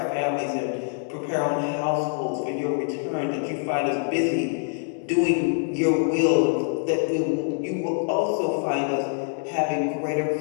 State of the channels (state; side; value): silent; right; digital silence